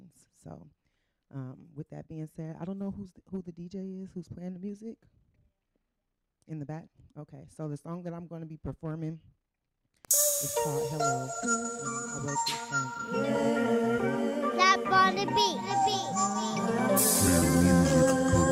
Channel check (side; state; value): both; identical; correlation 1.00